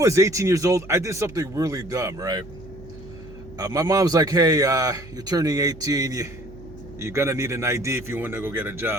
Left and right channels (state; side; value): noise; right; hum, 18 dB below the sound